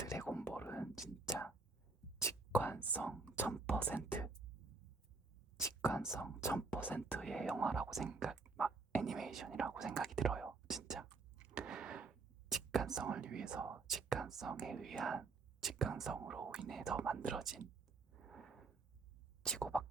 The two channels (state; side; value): quieter; left; 4.0 dB